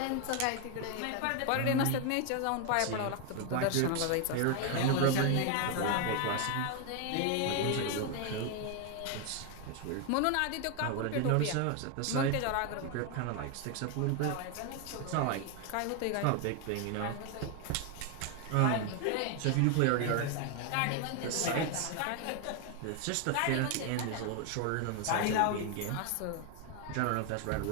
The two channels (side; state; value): both; different; correlation 0.01